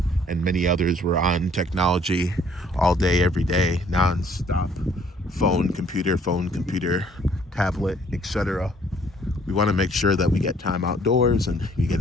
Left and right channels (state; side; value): normal; both; correlation 0.61